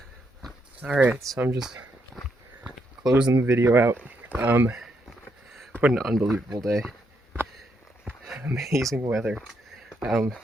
Alright, so I'm just closing the video out. What an unbelievable day. Amazing weather.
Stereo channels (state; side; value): normal; both; correlation 0.78